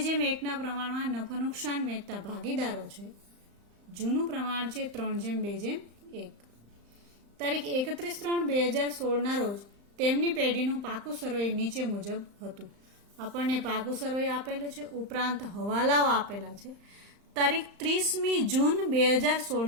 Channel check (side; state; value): left; late; 35 ms